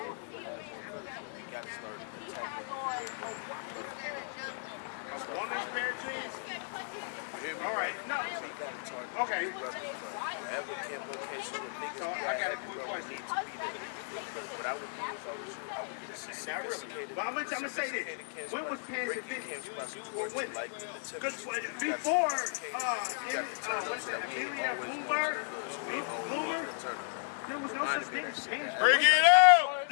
I believe in that. He has on a woman's Instead of nothing. A woman's pair of jeans? Can't put it. All right, no. Okay, so I got a quick question. Not really. But I'm gonna say this. When was pants invented for women? Because before, what is that, Amelia Bloomer, there was no such thing as pants for Bring women. it out.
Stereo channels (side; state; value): right; silent; digital silence